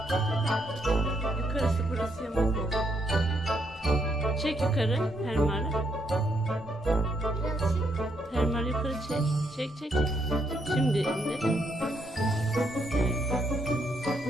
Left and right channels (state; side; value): normal; both; correlation 0.76